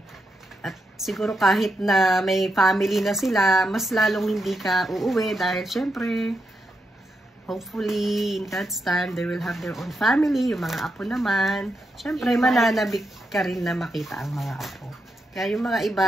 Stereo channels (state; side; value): normal; both; correlation 0.84